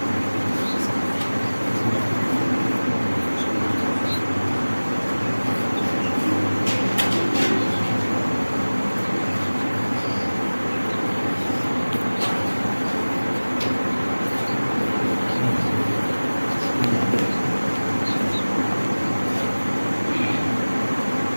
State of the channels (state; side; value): inverted; both; correlation -1.00